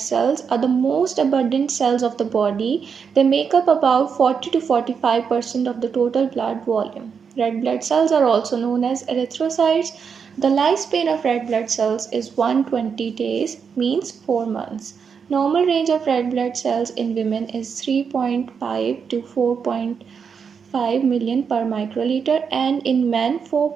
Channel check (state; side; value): quieter; left; 6.3 dB